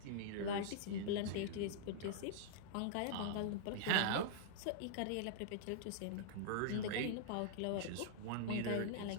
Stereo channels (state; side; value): different; both; correlation -0.02